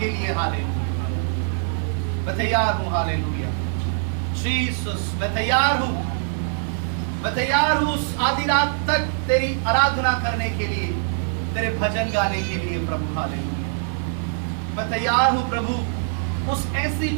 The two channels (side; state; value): left; silent; 63 dB below the other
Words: लिए। हालेलुया, मैं तैयार हूं। हालेलुया जीसस, मैं तैयार हूं, मैं तैयार हूं उस आधी रात तक तेरी आराधना करने के लिए, तेरे भजन गाने के लिए प्रभु। हालेलुया, मैं तैयार हूं प्रभु उस ऐसी